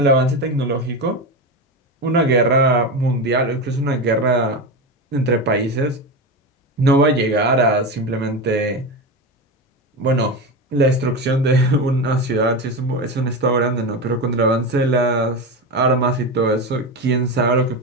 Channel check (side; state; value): both; normal; correlation 0.19